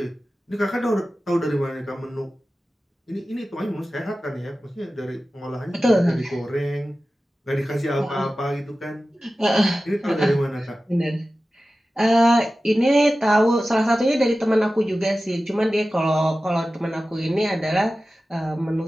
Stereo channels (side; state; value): both; normal; correlation 0.95